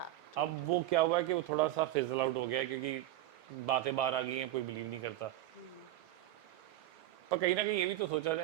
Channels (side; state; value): left; quieter; 14.6 dB